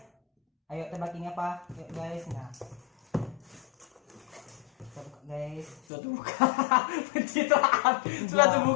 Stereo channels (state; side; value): drops out; right; at 5.8 s